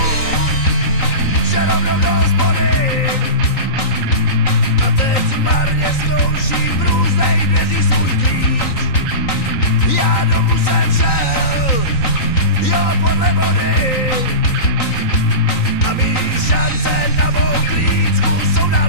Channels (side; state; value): right; late; 3.9 ms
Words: že rovnou do hospody, a teď marně zkouším v různých dveří svůj klíč. Já domů jsem šel, jo podle vody, a mý šance na mou klíčku jsou